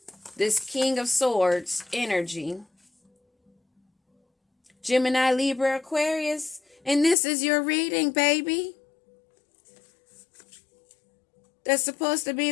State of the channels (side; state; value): right; drops out; at 7.2 s